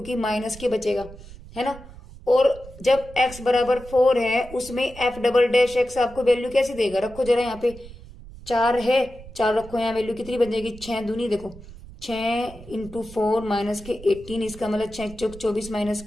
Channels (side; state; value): right; noise; rumble, 17 dB below the sound